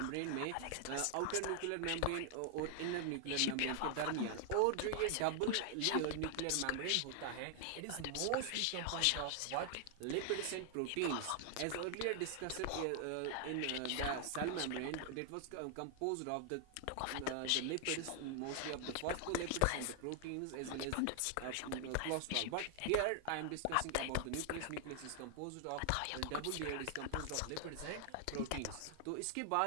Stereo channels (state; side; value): different; both; correlation 0.00